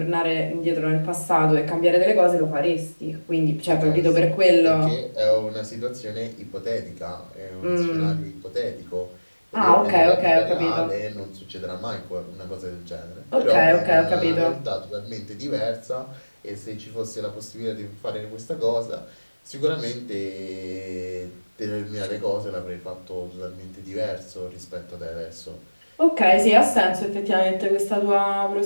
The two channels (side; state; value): both; inverted; correlation -1.00